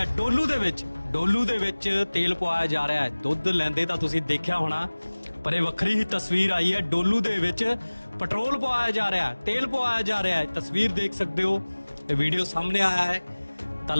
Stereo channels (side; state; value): both; inverted; correlation -1.00